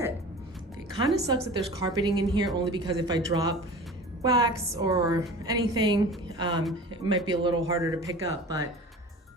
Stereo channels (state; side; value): normal; both; correlation 0.38